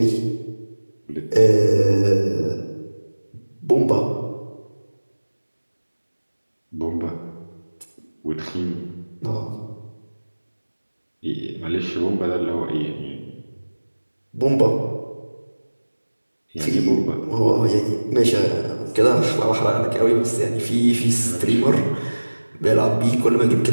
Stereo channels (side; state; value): both; inverted; correlation -1.00